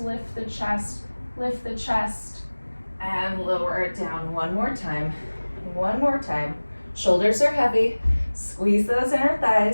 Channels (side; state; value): both; inverted; correlation -1.00